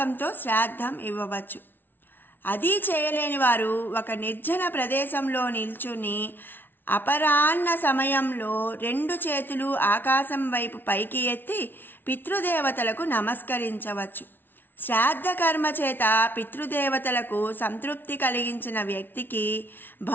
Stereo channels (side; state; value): right; late; 0.098 ms